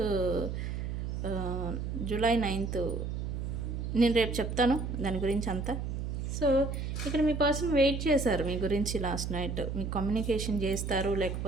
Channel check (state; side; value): noise; right; hum, 3 dB below the sound